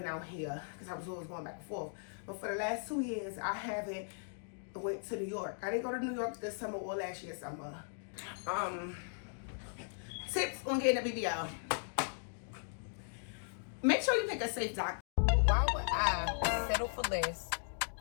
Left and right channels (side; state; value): right; silent; digital silence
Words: out here because I was always going back and forth. But for the last 2 years, I haven't went to New York. I didn't go to New York this summer or last year summer. Tips on getting a BBL. Make sure you pick a safe doctor. Why would I settle for less